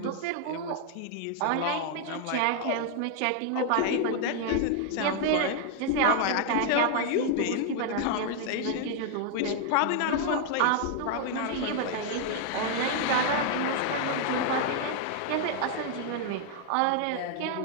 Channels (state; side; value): different; both; correlation 0.00